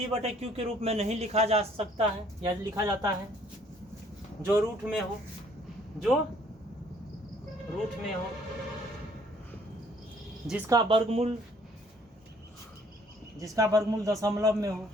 के रूप में नहीं लिखा जा सकता है या लिखा जाता है, जो रूट में हो, जो रूट में हो, जिसका वर्गमूल दशमलव में हो,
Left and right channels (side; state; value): both; normal; correlation 0.61